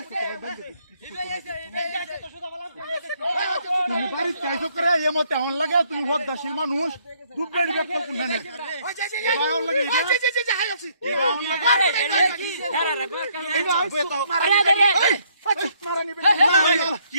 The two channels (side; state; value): both; inverted; correlation -0.68